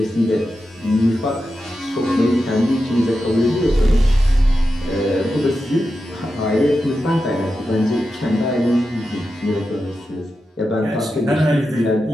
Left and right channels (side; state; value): both; normal; correlation 0.90